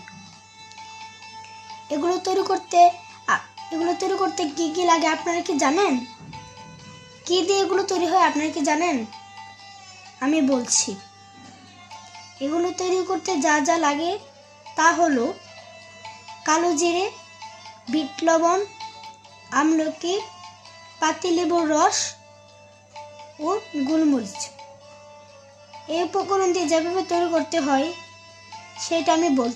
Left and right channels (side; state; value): both; identical; correlation 1.00